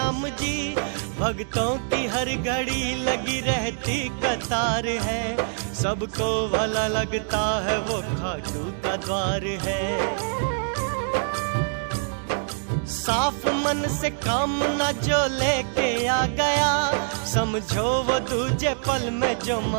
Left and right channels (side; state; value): left; silent; digital silence